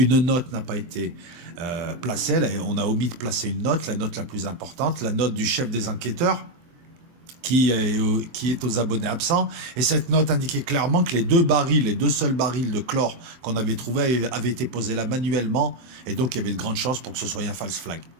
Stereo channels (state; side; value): late; left; 23 ms